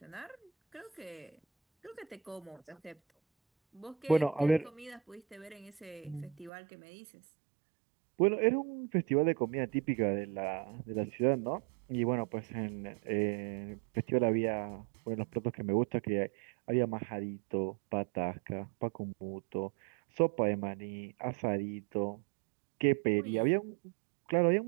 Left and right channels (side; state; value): left; drops out; at 6.5 s